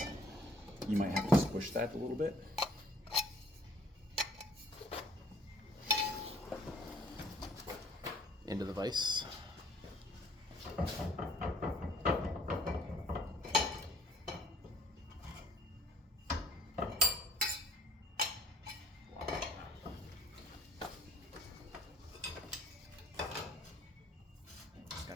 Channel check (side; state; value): both; normal; correlation 0.58